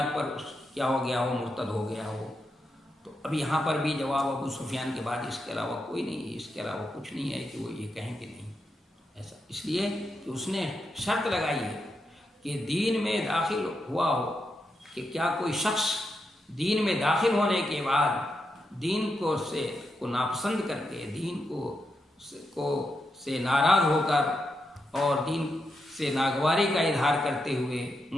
پر کیا ہو گیا ہو، مرتد ہو گیا ہو. تو اب یہاں پر بھی جواب ابو سفیان کے بعد اس کے علاوہ کوئی نہیں ہے، اس کے علاوہ کچھ نہیں ہے کہ وہ یہ کہیں کہ نہیں ایسا، اس لیے کہ اس نے شرط لگائی ہے کہ دین میں داخل ہوا ہو، کہ کیا کوئی شخص دین میں داخل ہونے کے بعد دین کو ناپسند کر کے، دین کو سے ناراض ہو کر اور دین سے ناگواری کا اظہار کرتے ہوئے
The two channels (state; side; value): normal; both; correlation 0.84